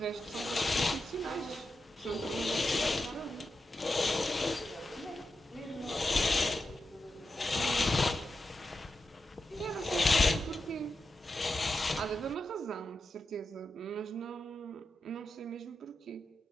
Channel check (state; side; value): normal; both; correlation 0.88